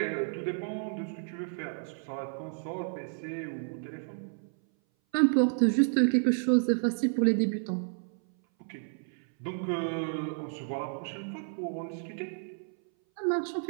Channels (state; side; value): silent; left; 57 dB below the other